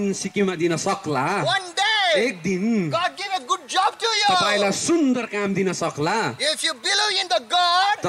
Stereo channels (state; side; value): identical; both; correlation 1.00